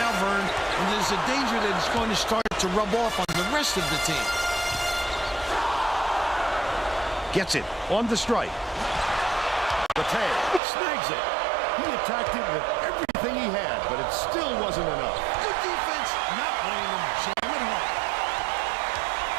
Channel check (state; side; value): drops out; left; at 10.6 s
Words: Vern, and there's a danger that it's going to start to rub off on the rest of the team. Gets it on the strike. Bate snags it. He attacked it with everything he had, but it still wasn't enough. Good defense, not letting them jam it home.